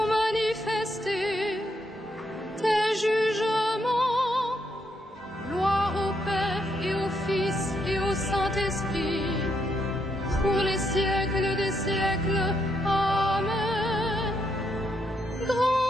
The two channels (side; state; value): both; normal; correlation 0.77